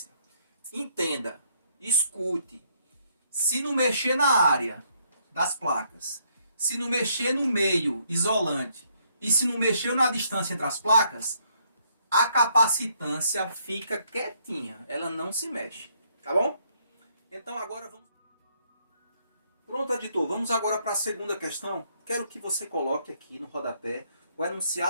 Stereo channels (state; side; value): inverted; both; correlation -0.70